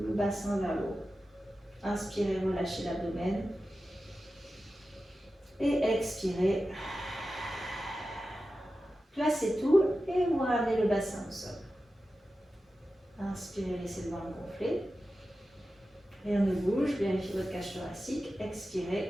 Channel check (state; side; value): normal; both; correlation 0.93